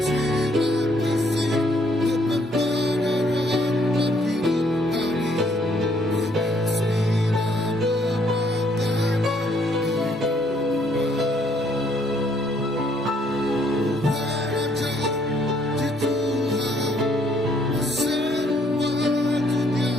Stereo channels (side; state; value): both; normal; correlation 0.67